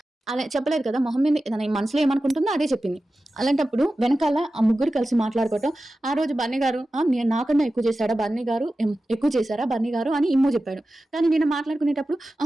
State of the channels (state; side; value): normal; both; correlation 0.94